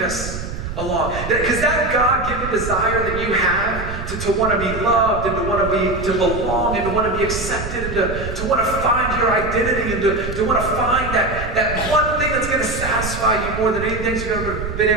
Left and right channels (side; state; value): right; noise; rumble, 7 dB below the sound